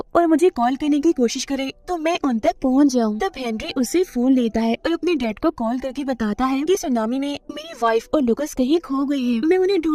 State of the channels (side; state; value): both; identical; correlation 1.00